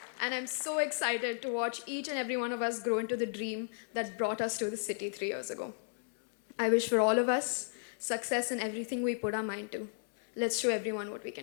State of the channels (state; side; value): silent; right; 55 dB below the other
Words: And I'm so excited to watch each and every one of us grow into the dream that brought us to the city 3 years ago. I wish for all of us success in everything we put our mind to. Let's show everyone what we